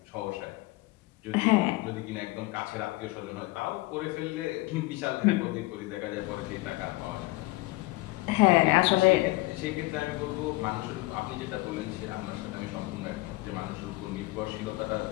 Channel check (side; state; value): right; quieter; 21.2 dB